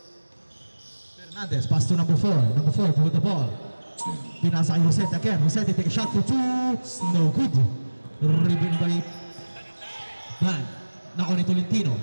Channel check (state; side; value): inverted; both; correlation -1.00